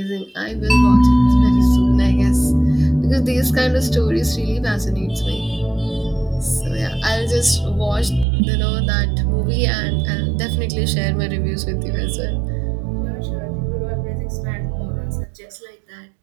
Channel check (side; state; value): left; drops out; at 8.2 s